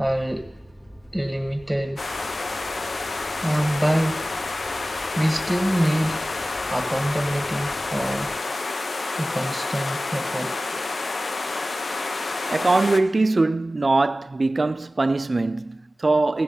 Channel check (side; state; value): both; normal; correlation 0.96